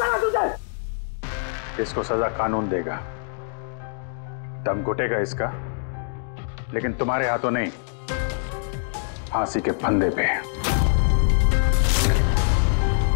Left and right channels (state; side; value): silent; right; 63 dB below the other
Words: ना तुझे। इसको सजा कानून देगा, दम घुटेगा इसका, लेकिन तुम्हारे हाथों नहीं, फांसी के फंदे पे।